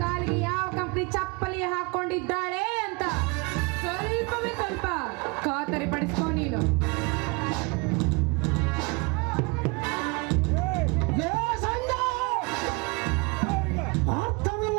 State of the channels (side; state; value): left; quieter; 29.0 dB